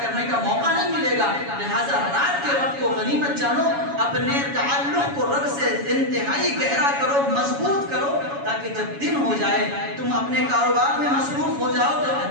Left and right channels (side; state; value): left; late; 7.2 ms